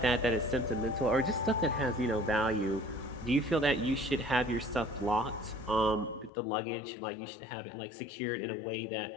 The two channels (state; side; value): drops out; right; at 6.3 s